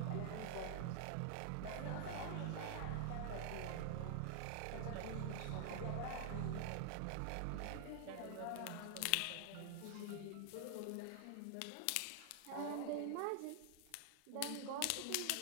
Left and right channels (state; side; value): different; both; correlation 0.00